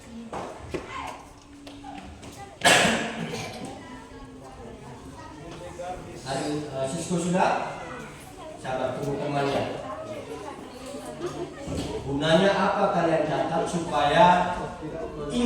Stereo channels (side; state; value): both; identical; correlation 1.00